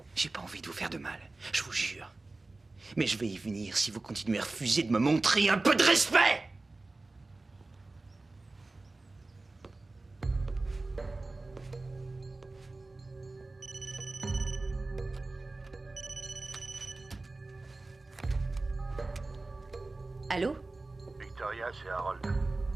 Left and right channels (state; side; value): quieter; left; 3.2 dB